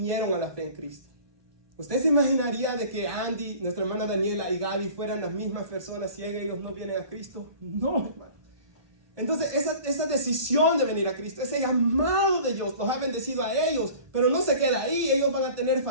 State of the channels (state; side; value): late; left; 1.2 ms